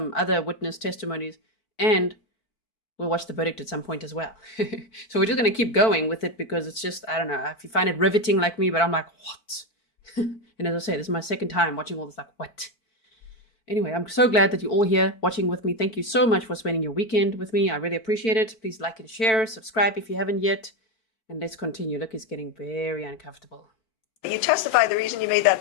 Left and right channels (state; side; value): late; right; 4.5 ms